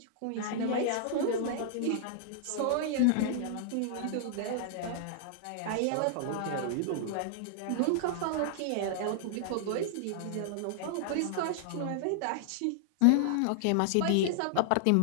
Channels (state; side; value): different; both; correlation -0.01